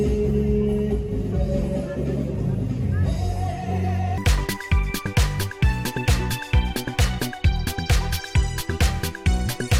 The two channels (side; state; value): both; identical; correlation 1.00